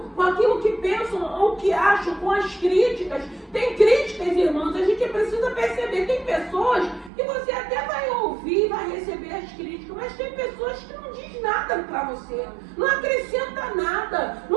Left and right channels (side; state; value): left; drops out; at 7.1 s